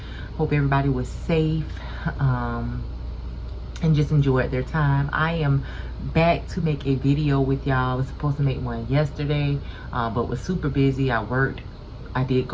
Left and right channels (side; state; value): both; identical; correlation 1.00